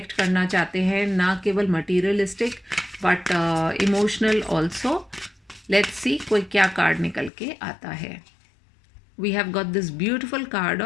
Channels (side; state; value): right; drops out; at 7.3 s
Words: करना चाहते हैं, ना केवल materialistic but emotional also. Let's see कोई क्या कार्ड निकल के आता है। We have got this beautiful card